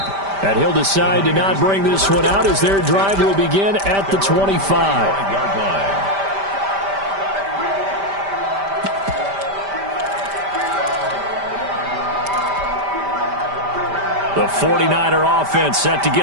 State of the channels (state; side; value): late; left; 5.1 ms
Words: And he'll decide to not bring this one out as their drive will begin at the 25. The 49er offense set to